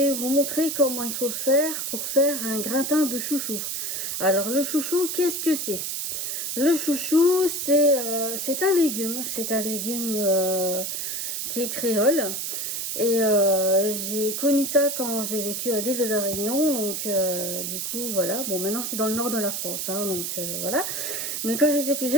vous montrer comment il faut faire pour faire un gratin de chouchou. Alors le chouchou, qu'est-ce que c'est? Le chouchou, c'est un légume. C'est un légume qui est créole. Et j'ai connu ça quand j'ai vécu à l'île de la Réunion. Donc du coup, voilà. Bon, maintenant je suis dans le nord de la France. Hein, donc voilà. Mais quand j'étais plus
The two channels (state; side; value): noise; right; hiss, 3 dB below the sound